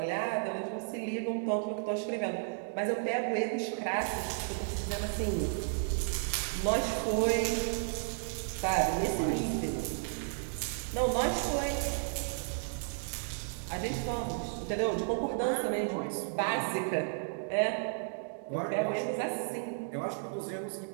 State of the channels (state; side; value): silent; left; digital silence